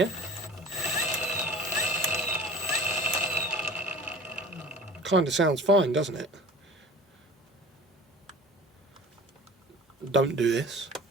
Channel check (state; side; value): normal; both; correlation 0.42